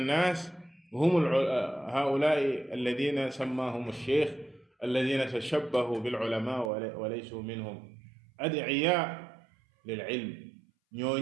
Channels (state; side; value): drops out; left; at 6.7 s